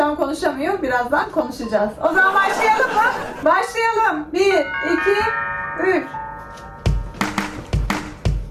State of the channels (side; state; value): both; identical; correlation 1.00